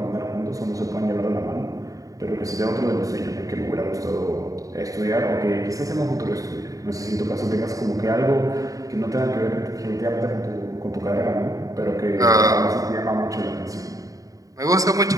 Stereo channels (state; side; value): late; left; 0.16 ms